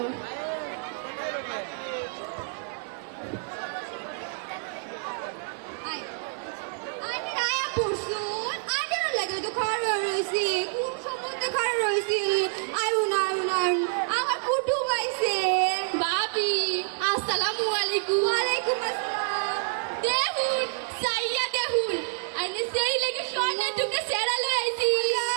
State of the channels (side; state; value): left; silent; digital silence